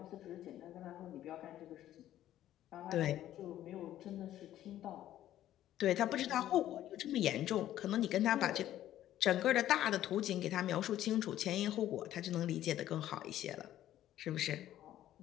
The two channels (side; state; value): right; quieter; 12.7 dB